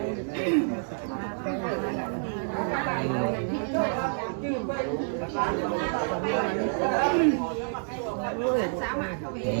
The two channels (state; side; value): silent; left; digital silence